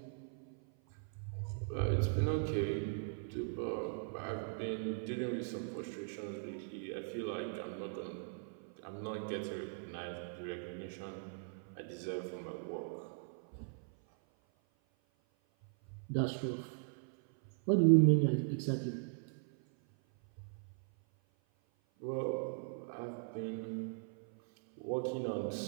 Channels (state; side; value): silent; left; 52 dB below the other